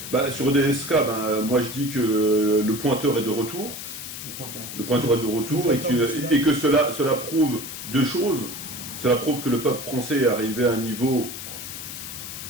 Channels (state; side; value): noise; left; hiss, 9 dB below the sound